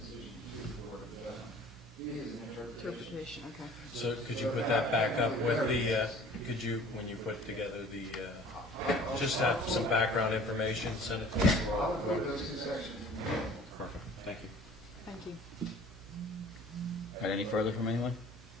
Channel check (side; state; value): right; noise; hum, 18 dB below the sound